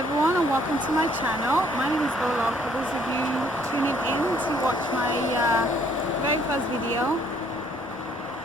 and welcome to my channel. My name is Ola. For those of you tuning in to watch my very first video,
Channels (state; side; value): noise; right; rumble, 24 dB below the sound